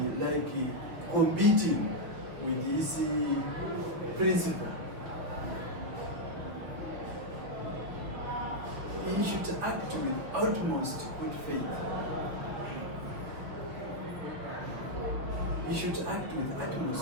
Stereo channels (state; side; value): late; left; 5.8 ms